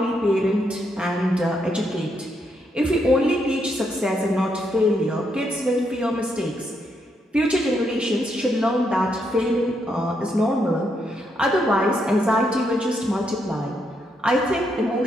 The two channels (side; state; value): both; normal; correlation 0.78